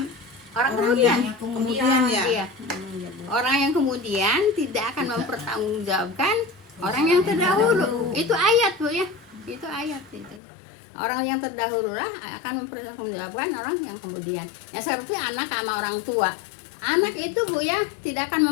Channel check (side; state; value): right; drops out; at 10.4 s